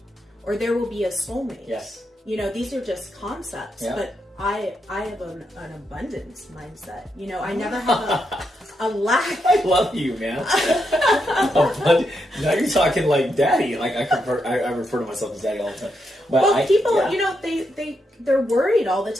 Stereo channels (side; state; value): both; normal; correlation 0.82